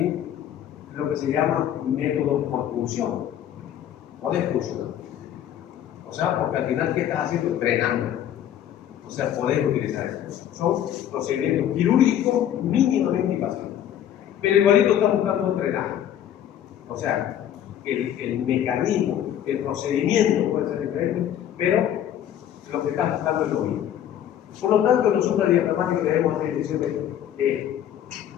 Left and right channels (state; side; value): quieter; right; 10.7 dB